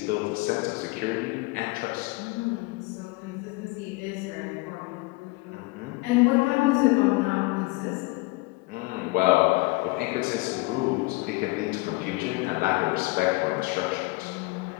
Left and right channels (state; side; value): quieter; right; 23.7 dB